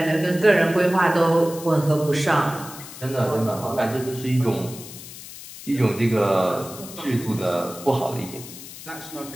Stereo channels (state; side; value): noise; left; hiss, 14 dB below the sound